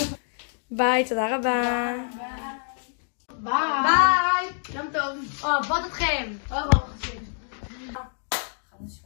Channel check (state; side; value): silent; right; digital silence